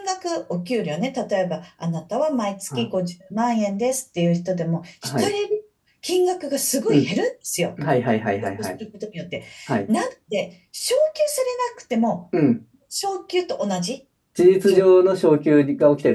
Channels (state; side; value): identical; both; correlation 1.00